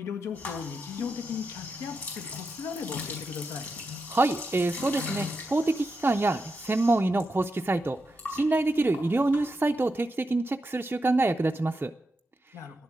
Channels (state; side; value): normal; both; correlation 0.87